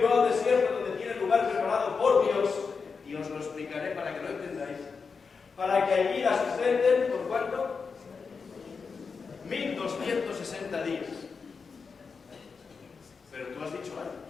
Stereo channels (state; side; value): quieter; right; 5.2 dB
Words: al desierto, donde tiene lugar preparado por Dios, y os lo explicaré para que lo entendáis, para que allí la sustenten, ¿por cuánto? 1260 días. Pero tú has dicho años.